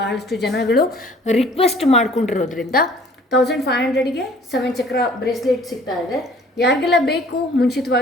ಜನಗಳು ರಿಕ್ವೆಸ್ಟ್ ಮಾಡ್ಕೊಂಡಿರೋದ್ರಿಂದ 1500ಗೆ 7 ಚಕ್ರ ಬ್ರೇಸ್ಲೆಟ್ ಸಿಗ್ತಾ ಇದೆ. ಯಾರಿಗೆಲ್ಲ ಬೇಕು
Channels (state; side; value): normal; both; correlation 0.53